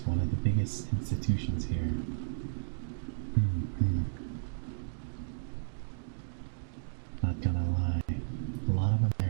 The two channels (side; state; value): left; silent; digital silence